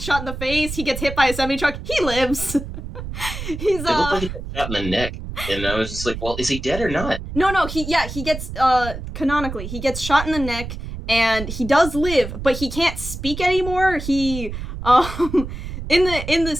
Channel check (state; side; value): noise; right; rumble, 8 dB below the sound